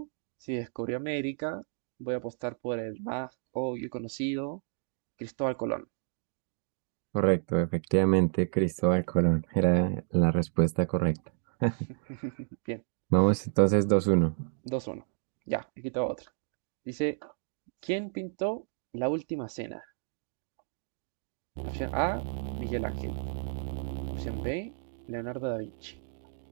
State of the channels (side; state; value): left; silent; digital silence